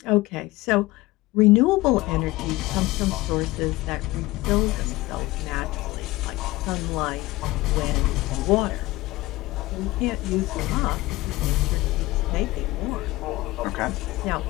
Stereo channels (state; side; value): quieter; right; 19.5 dB